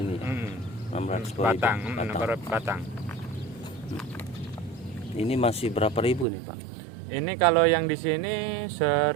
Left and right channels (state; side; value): drops out; left; at 6.2 s